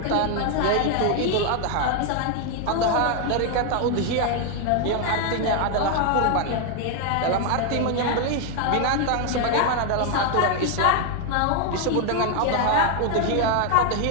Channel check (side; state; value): both; different; correlation 0.01